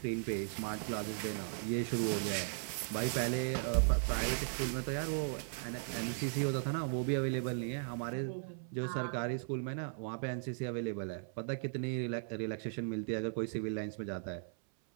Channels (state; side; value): silent; left; 53 dB below the other